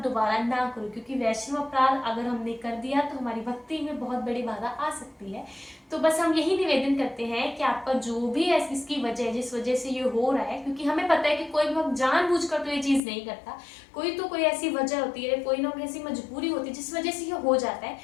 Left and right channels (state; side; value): drops out; right; at 13.0 s